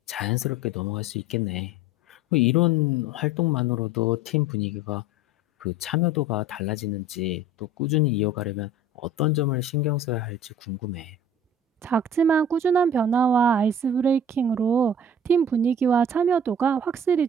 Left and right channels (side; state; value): both; normal; correlation 0.44